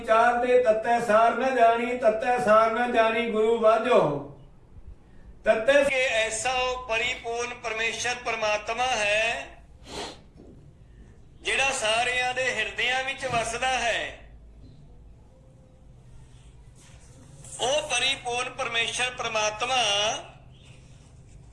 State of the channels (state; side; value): identical; both; correlation 1.00